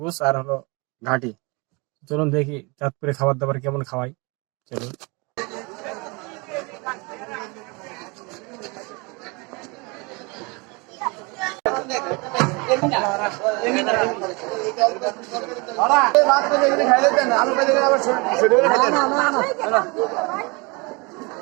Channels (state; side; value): quieter; left; 28.5 dB